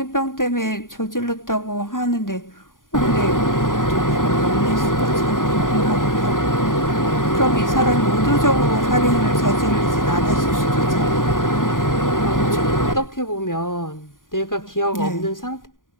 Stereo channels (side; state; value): right; late; 0.89 ms